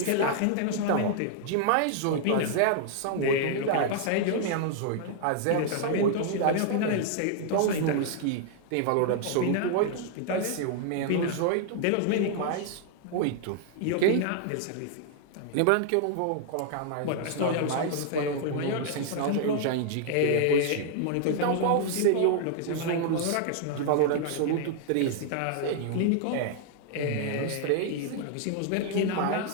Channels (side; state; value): both; different; correlation 0.00